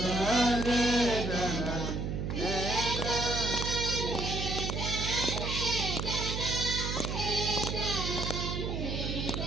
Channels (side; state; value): right; noise; hum, 2 dB below the sound